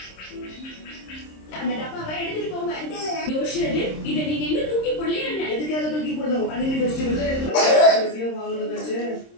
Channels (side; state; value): right; late; 26 ms